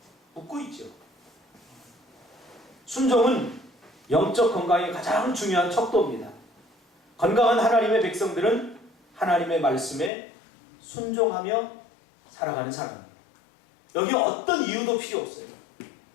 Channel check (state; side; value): drops out; right; at 10.1 s